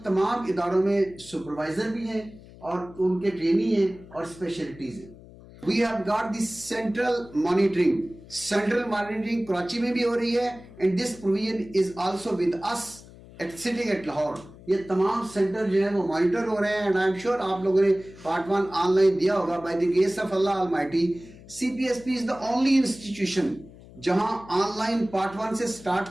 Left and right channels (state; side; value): noise; left; hum, 20 dB below the sound